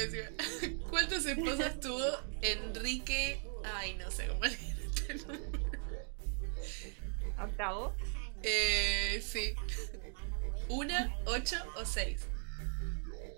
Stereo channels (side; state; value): left; silent; 52 dB below the other